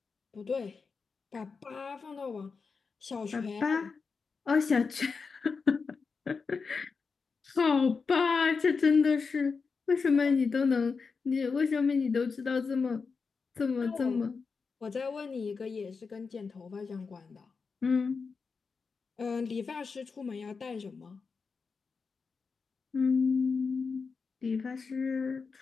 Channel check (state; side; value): quieter; right; 5.0 dB